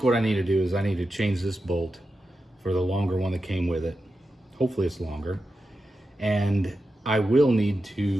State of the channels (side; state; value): both; normal; correlation 0.90